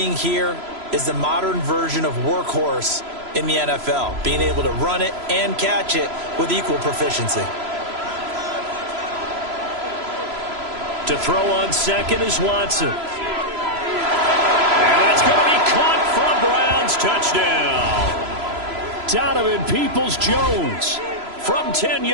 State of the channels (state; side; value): late; left; 3.0 ms